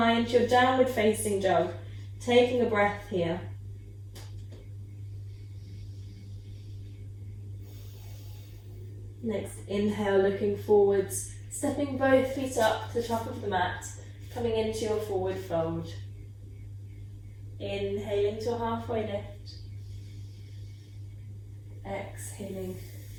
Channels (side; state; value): both; identical; correlation 1.00